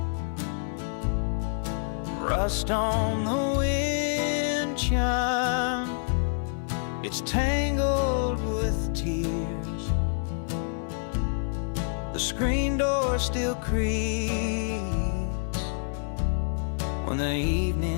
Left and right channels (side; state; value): right; silent; 60 dB below the other